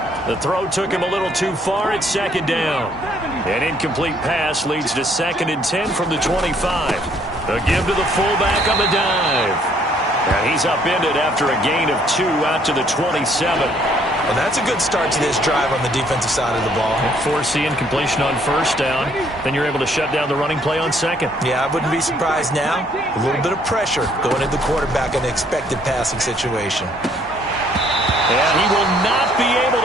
The throw took him a little too far at 2nd down. An incomplete pass leads to 2nd and 10 from the 25. The give to the fullback on the dive. And he's upended after a gain of 2 out to the 27. Well, that's a good start to this drive on the defensive side of the ball. Foreseeing completion on 1st down. Then you're able to shut down the running play on 2nd. Yeah, I wouldn't be surprised now. A little bit of pressure going into the quarterback in an expected passing situation. And he will not be able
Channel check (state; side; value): normal; both; correlation 0.65